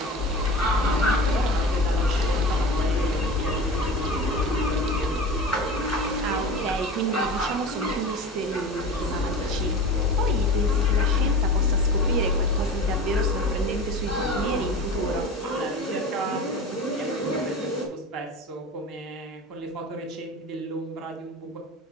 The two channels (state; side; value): normal; both; correlation 0.33